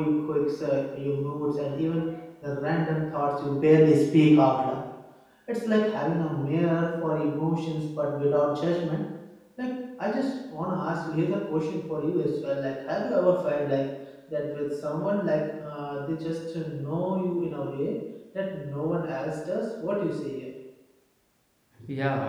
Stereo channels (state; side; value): identical; both; correlation 1.00